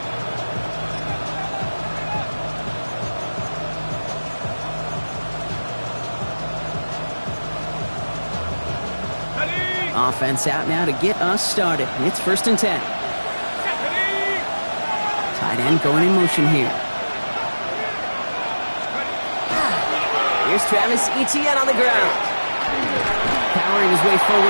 Offense out now to get us started. It's 1st and 10. Tight end going in motion here. Here's Travis Etienne on the ground. Powering his way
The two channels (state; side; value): inverted; both; correlation -1.00